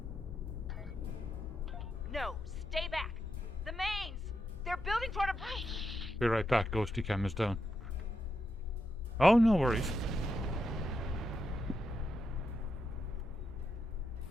No, stay back. The mains! They're building toward a... Be right back, Ghosty Cam is down. Oh, no worries.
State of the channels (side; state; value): both; normal; correlation 0.84